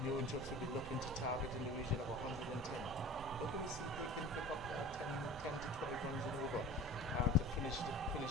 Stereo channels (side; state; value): both; normal; correlation 0.39